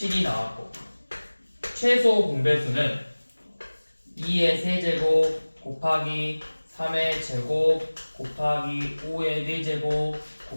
나왔고 최소 공배수는 2의 세제곱 곱하기 3의 제곱 곱하기 5의 4제곱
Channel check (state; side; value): inverted; both; correlation -1.00